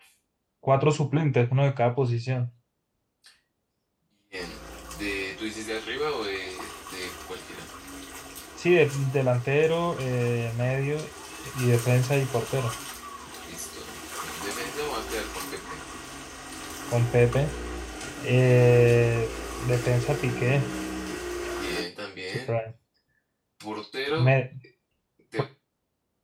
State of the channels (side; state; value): both; identical; correlation 1.00